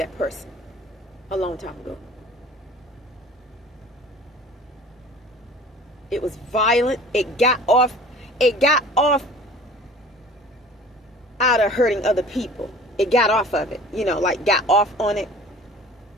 person a long time ago. It was violent. It got off out of hurting other people. It got off of it, like got off on it.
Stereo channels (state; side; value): normal; both; correlation 0.45